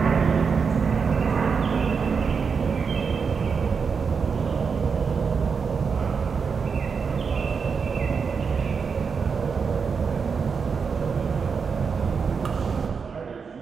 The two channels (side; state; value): left; quieter; 5.7 dB